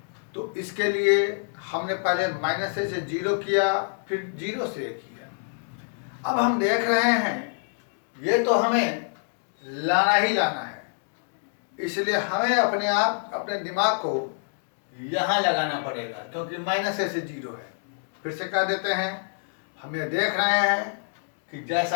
तो इसके लिए हमने पहले -a से 0 किया, फिर 0 से a किया। अब हम देख रहे हैं ये तो हमें लाना ही लाना है, इसलिए हमें अपने आप अपने दिमाग को यहाँ लगाना पड़ेगा, क्योंकि -a से 0 है। फिर से कह देते हैं, हम ये देख रहे हैं कि जैसा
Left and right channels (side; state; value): right; silent; digital silence